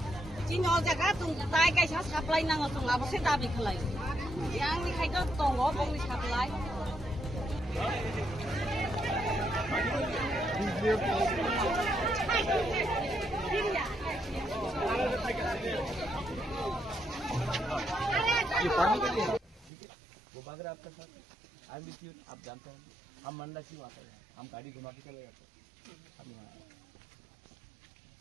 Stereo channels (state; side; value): drops out; left; at 19.7 s